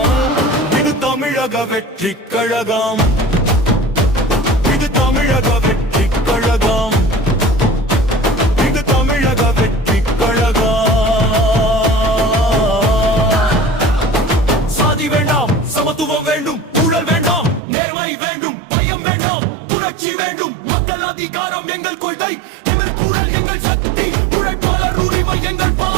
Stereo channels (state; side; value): drops out; left; at 17.6 s